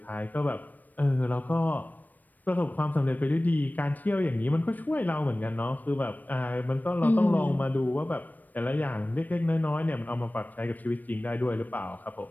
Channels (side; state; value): right; late; 0.085 ms